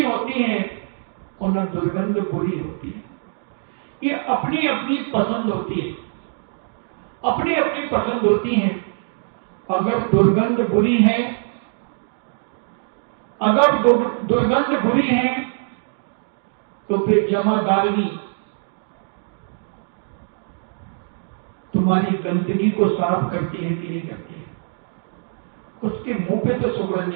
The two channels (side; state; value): left; silent; digital silence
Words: होती है और न दुर्गंध बुरी होती है। ये अपनी अपनी पसंद होती है, अपनी अपनी पसंद होती है। अगर दुर्गंध बुरी है, अगर दुर्गंध बुरी है तो फिर जमादारनी तुम्हारी गंदगी को साफ करती है कि नहीं करती है? उसके मुंह पे तो सुगंध